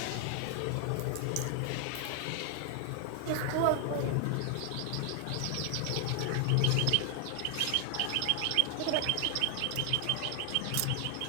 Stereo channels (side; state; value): both; different; correlation 0.00